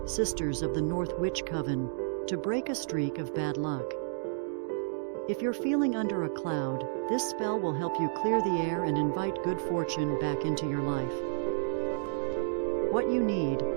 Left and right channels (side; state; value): left; silent; digital silence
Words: Sisters of the North Witch Coven, to break a streak of bad luck. If you're feeling under a cloud, this spell will help you clear the air and invite good fortune back into your life. What you need: